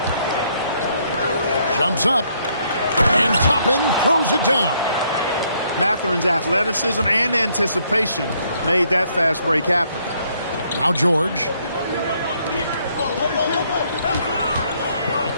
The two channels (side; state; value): both; inverted; correlation -0.69